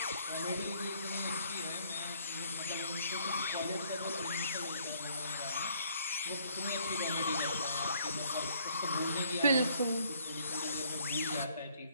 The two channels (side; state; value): both; inverted; correlation -0.64